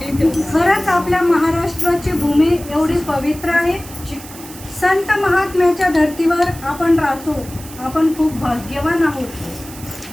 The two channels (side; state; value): right; noise; hiss, 16 dB below the sound